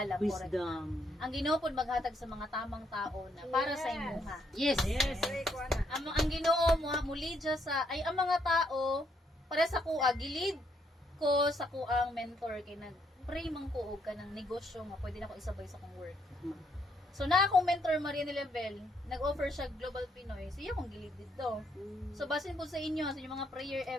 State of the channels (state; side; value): normal; both; correlation 0.73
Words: correct. Wisdom. Ang Ginoo po maghatag sa mga tamang tao na para sa imuha. Yes. Ang Ginoo mo muli dya sa ay ang mga tao para sa kuha gilid ko sa kuang mentor kay nag-pray man ko og kanang negosyo nga pwede na ko isabay sa kong work. So na akong mentor Maria Level, nag-offer siya Global Pinoy. Siya akong gilid dito. So basin po sa inyo sa inyong mga prayer